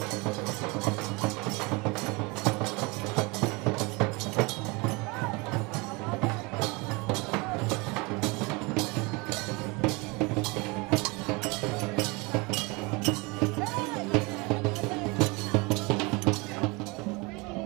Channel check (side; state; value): left; quieter; 26.5 dB